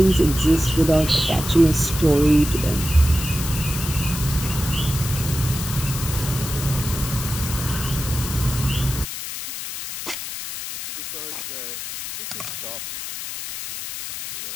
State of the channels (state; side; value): noise; left; hiss, 7 dB below the sound